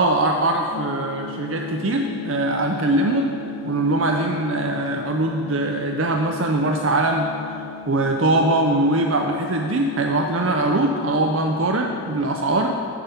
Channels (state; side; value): normal; both; correlation 0.09